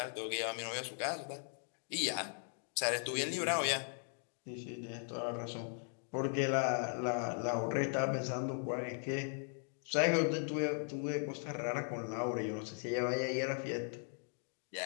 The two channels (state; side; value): silent; right; 52 dB below the other